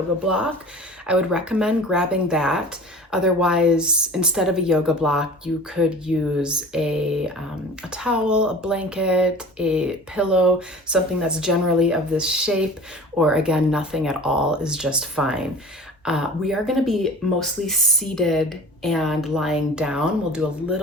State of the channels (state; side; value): normal; both; correlation 0.40